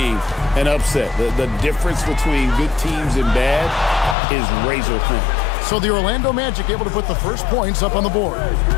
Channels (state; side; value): drops out; right; at 4.2 s